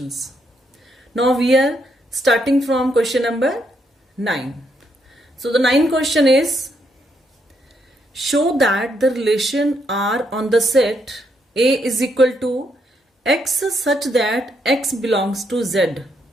Now we are starting from question number 9. So the 9th question is, show that the relation R on the set A is equal to X such that X belongs to Z,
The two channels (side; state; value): both; normal; correlation 0.76